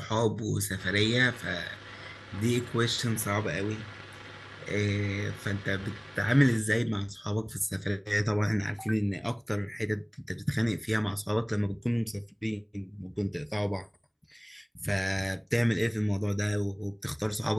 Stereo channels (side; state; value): both; identical; correlation 1.00